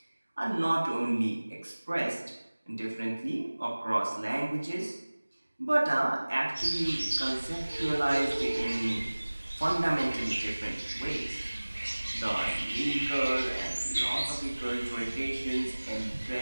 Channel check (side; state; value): both; inverted; correlation -1.00